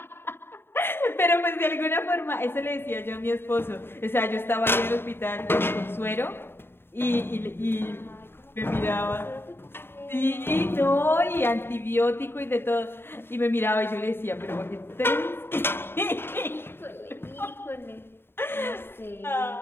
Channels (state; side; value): late; right; 0.11 ms